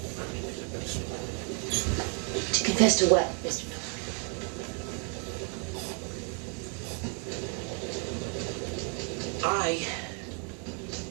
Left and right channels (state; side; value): quieter; left; 39.3 dB